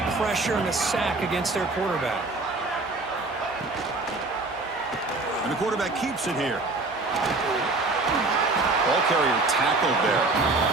pressure and a sack against their quarterback. And the quarterback keeps it here. Ball carrier tackled there.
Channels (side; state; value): left; quieter; 3.3 dB